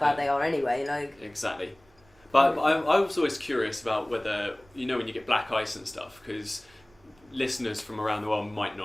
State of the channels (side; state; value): right; noise; rumble, 30 dB below the sound